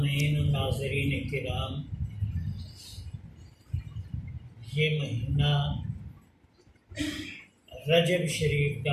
و ناظرین کرام، یہ مہینہ رجب شریف کا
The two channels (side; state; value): both; identical; correlation 1.00